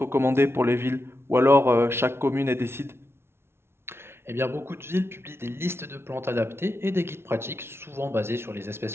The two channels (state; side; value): late; left; 0.12 ms